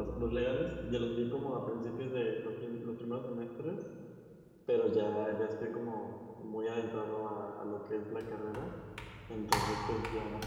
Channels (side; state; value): both; identical; correlation 1.00